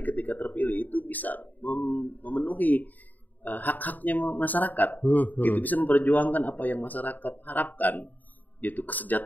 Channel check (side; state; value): right; late; 0.083 ms